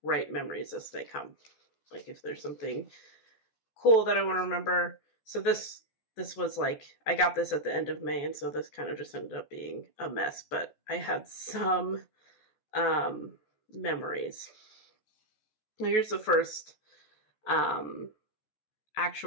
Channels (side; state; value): right; late; 14 ms